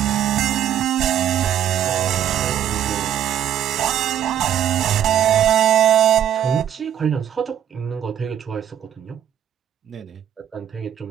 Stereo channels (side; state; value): left; quieter; 10.1 dB